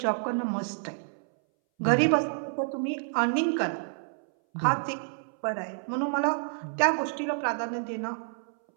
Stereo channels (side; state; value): left; silent; 59 dB below the other